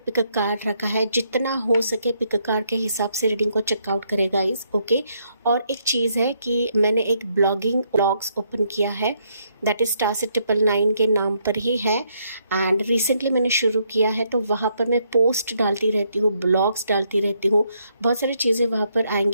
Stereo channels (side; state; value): both; inverted; correlation -0.74